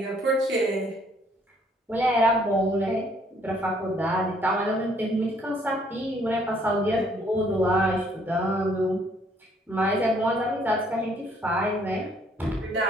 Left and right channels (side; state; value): both; normal; correlation 0.64